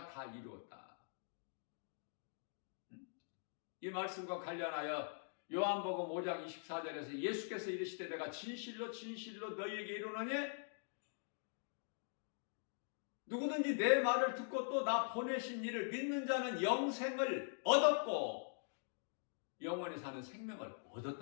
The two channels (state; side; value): silent; right; digital silence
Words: 다 이루었다. 이 말씀과 관련하여 요한복음 5장 24절에서 예수께서 이르시되, 내가 진실로 너희에게 이르노니 누구든지 내 말을 듣고 또 나 보내신 이를 믿는 자는 영생을 얻었고 영원히 사는 생명을